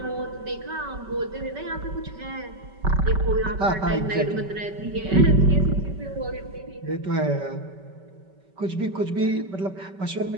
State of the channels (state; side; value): late; left; 5.2 ms